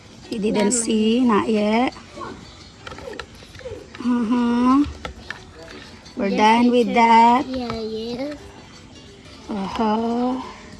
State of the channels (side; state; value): both; identical; correlation 1.00